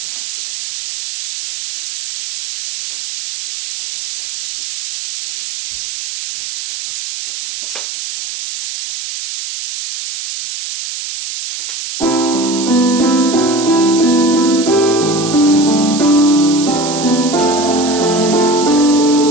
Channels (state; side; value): noise; right; hiss, 7 dB below the sound